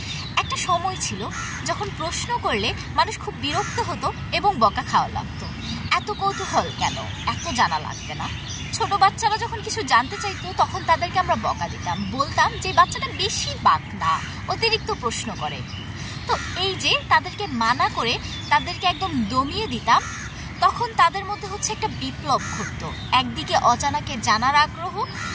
একটা সময় ছিল যখন প্রশ্ন করলে মানুষ খুব বিরক্ত হতো এবং বকা খাওয়া লাগতো। এত কৌতূহল কেন, এত জানা লাগবে না। ছোট বাচ্চারা যখন কিছু জানতে চাইতো তখন তাদেরকে আমরা বকা দিতাম, বলতাম যে বাচ্চাটা বেশি বাকনা, অতিরিক্ত প্রশ্ন করে। তো এই যে তাদেরকে মানা করে তাদেরকে একদম দমিয়ে দিতাম, তখন তাদের মধ্যে একটা বিপ্লব ঘটতো। একদিকে অজানাকে জানার আগ্রহ,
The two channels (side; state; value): both; identical; correlation 1.00